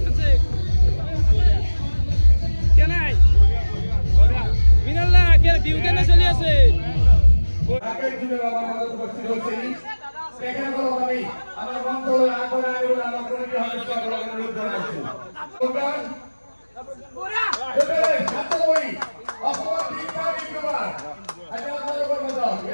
আছে কে নাই মিনাল্লা কে বিহু কেনে চলি আছে আগের দিনের আমার মধ্যে উপস্থিত হচ্ছে এখানে কোনো আমি আমার মন্ত্রণালয় আগরে আগরে আমার কমিটি হবে সকল অনুরোধ জানাচ্ছি প্রোগ্রাম এবারে ছাত্রই অসম দীক্ষা বিদ্যমান আচ্ছা আপনাদের কর্মদল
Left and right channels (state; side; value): inverted; both; correlation -1.00